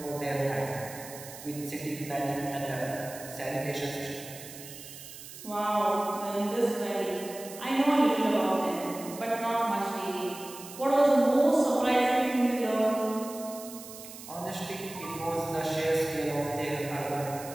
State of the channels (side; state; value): right; noise; hiss, 14 dB below the sound